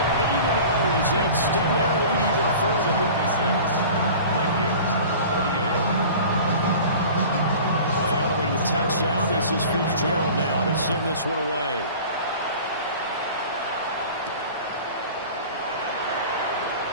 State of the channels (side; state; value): both; inverted; correlation -0.40